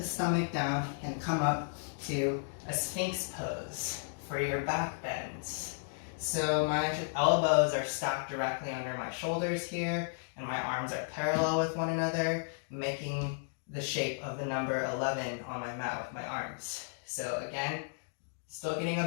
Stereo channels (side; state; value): right; silent; digital silence